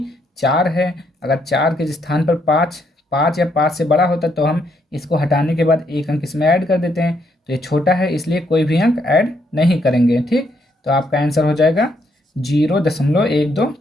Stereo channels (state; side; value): normal; both; correlation 0.74